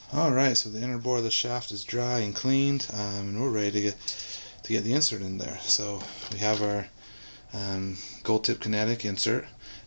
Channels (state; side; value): inverted; both; correlation -1.00